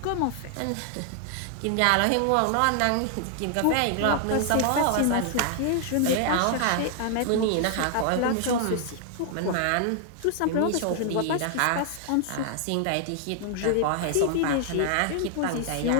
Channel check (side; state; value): both; different; correlation 0.00